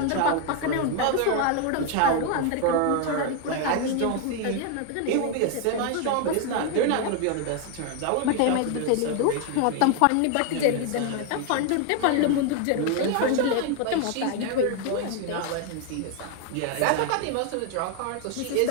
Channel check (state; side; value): different; both; correlation 0.01